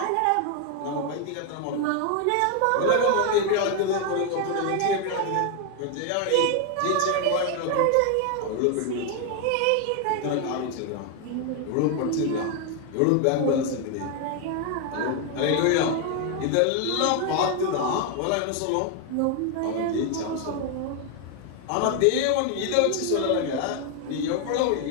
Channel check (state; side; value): different; both; correlation 0.01